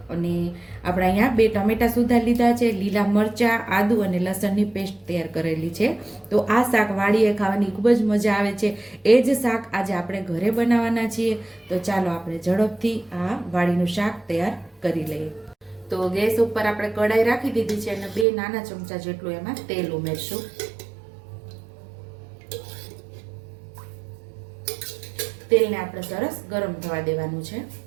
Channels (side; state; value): left; drops out; at 18.2 s